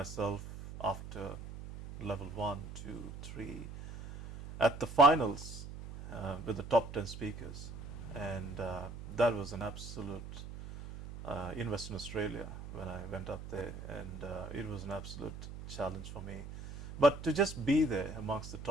after level 1, 2, 3 at the finals with the top 10 speakers, and that was an absolute in Western Australia when I went up there, and it was an absolute challenge for me. But to just be there amongst the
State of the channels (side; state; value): right; noise; hum, 11 dB below the sound